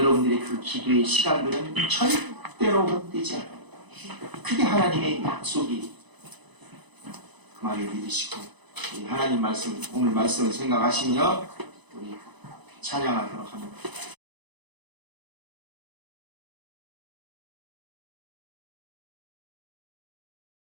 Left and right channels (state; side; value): late; left; 1.0 ms